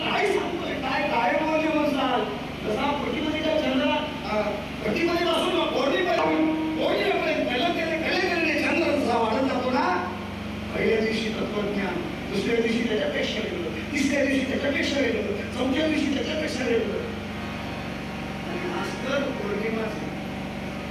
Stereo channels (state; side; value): identical; both; correlation 1.00